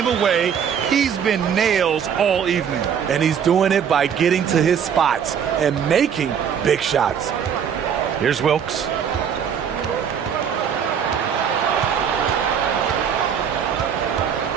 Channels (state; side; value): quieter; left; 7.8 dB